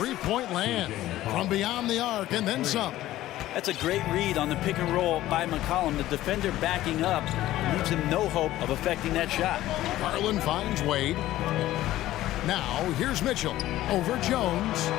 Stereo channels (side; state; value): right; quieter; 14.9 dB